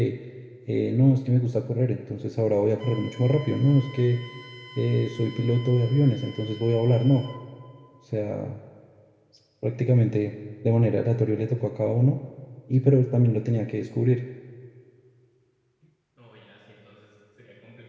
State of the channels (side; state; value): both; identical; correlation 1.00